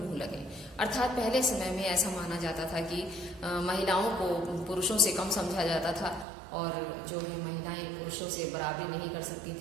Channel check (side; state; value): left; drops out; at 6.2 s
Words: लगे। अर्थात पहले समय में ऐसा माना जाता था कि महिलाओं को पुरुषों से कम समझा जाता था और जो है महिलाएं पुरुषों से बराबरी नहीं कर सकती